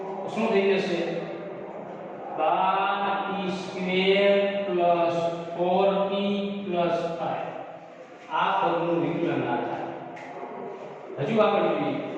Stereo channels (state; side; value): identical; both; correlation 1.00